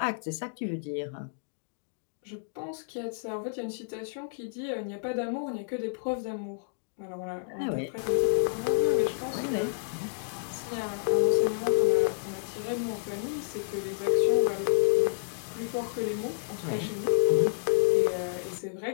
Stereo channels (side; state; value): right; silent; digital silence